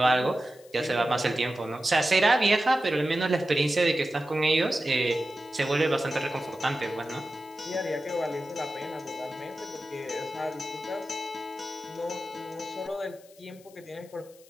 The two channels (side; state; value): left; noise; hiss, 26 dB below the sound